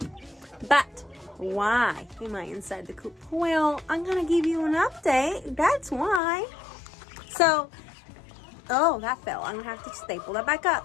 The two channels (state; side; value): drops out; right; at 6.2 s